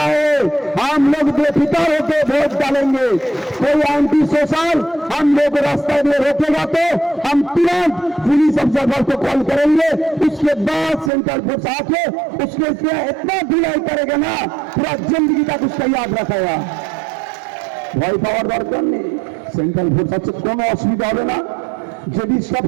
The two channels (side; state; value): left; drops out; at 11.1 s